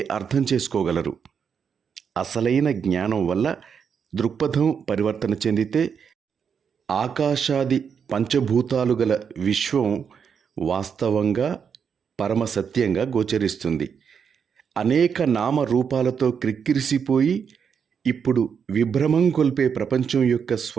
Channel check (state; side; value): quieter; left; 6.9 dB